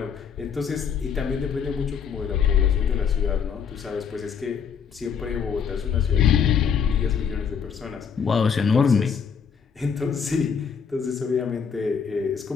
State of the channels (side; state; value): right; quieter; 6.9 dB